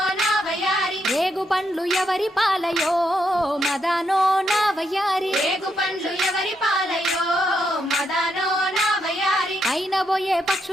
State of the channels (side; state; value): both; normal; correlation 0.79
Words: ఎవరి పాలయో మదానో నా వయ్యారి రేగు పండ్లు ఎవరి పాలయో మదానో నా వయ్యారి అయిన పోయే